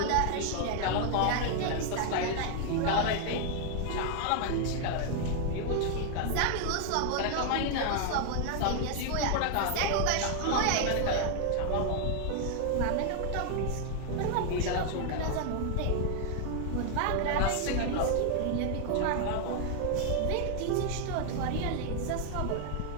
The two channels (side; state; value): both; different; correlation 0.00